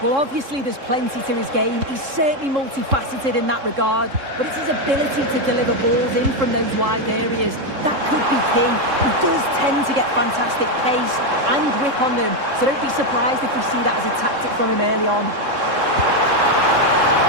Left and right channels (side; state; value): left; late; 3.7 ms